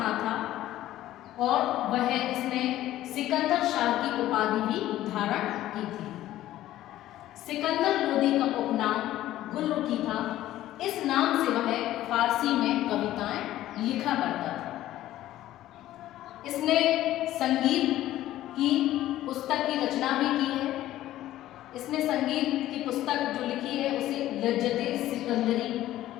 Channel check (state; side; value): quieter; right; 14.1 dB